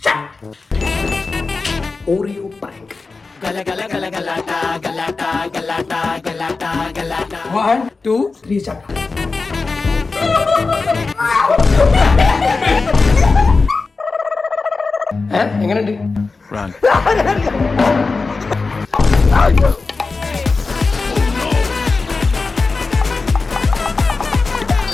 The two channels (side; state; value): right; quieter; 4.0 dB